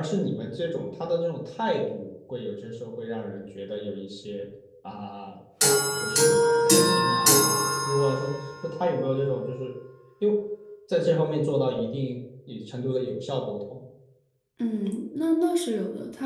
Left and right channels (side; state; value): both; identical; correlation 1.00